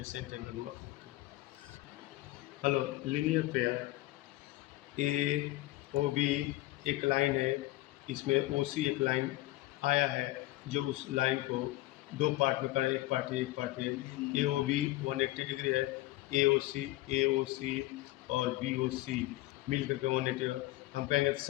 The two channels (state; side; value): quieter; right; 18.2 dB